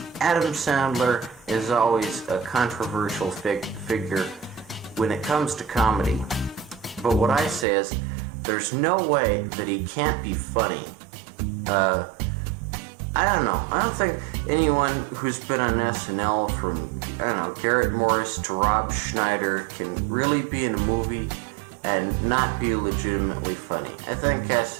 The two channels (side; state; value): left; drops out; at 7.7 s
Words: Adam Sandler is always a controversial figure when it comes to comedy. But what I say is, there's no way that he can't be funny. I don't know. I don't think anyone who's been on SNL from, Garrett Morris to Rob Schneider can really be in a movie and not be legitimately funny. I think